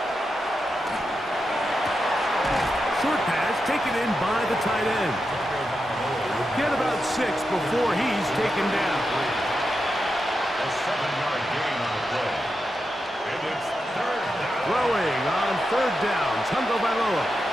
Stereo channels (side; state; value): both; normal; correlation 0.88